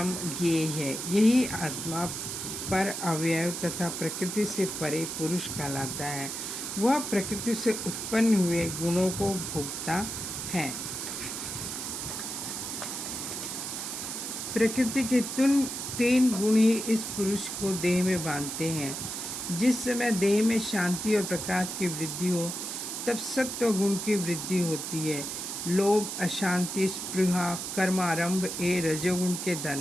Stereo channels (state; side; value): noise; right; hiss, 5 dB below the sound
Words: ज्ञेय है। यही आत्मा पर अवयव तथा प्रकृति से परे पुरुष कहलाता है। वह प्रकृति से उत्पन्न हुए गुणों को भोगता है। प्रकृति के तीन गुण ही इस पुरुष को देह में बांधते हैं। जिस समय देह में शांति और प्रकाश की वृद्धि हो, तब सत्व गुण की वृद्धि होती है। लोभ, अशांति, स्पृहा, कर्मारंभ ये रजोगुण के